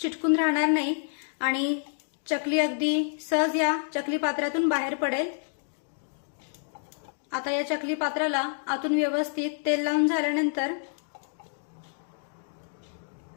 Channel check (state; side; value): silent; right; digital silence